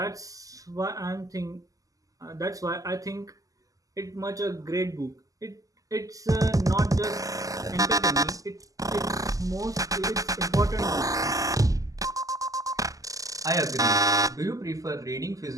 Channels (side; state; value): left; late; 0.17 ms